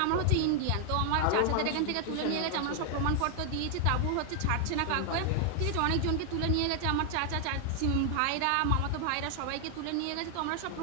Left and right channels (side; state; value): both; different; correlation 0.00